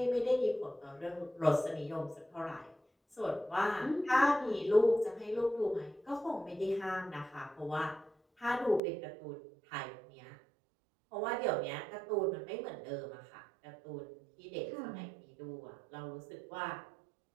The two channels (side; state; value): left; drops out; at 8.8 s